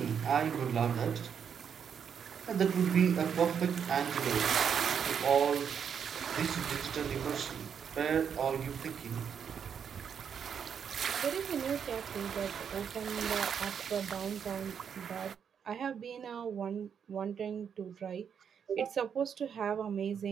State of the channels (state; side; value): quieter; left; 7.5 dB